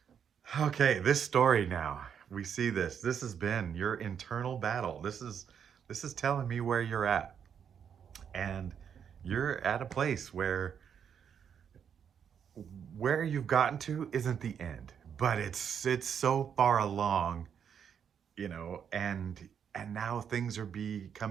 okay. This story now. We see this. This has been your internal battle. This is telling me where you're at. And you're at a place where you've gotten to isn't the end, but it's so far along, you know, and now things are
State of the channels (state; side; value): quieter; left; 7.8 dB